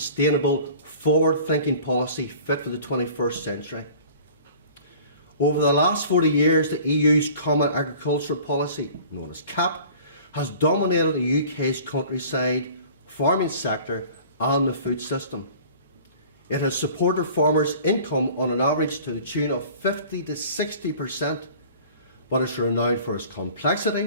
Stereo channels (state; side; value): inverted; both; correlation -0.46